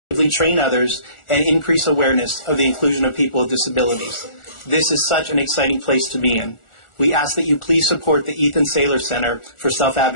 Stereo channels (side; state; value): right; late; 1.4 ms